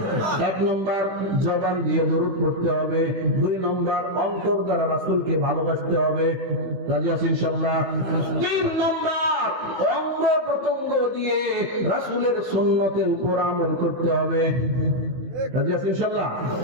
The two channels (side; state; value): left; late; 16 ms